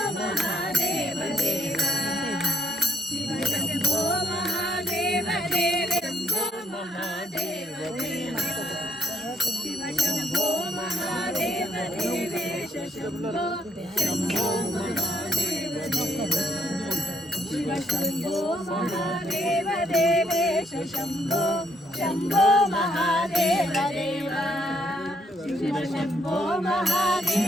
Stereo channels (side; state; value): both; normal; correlation 0.68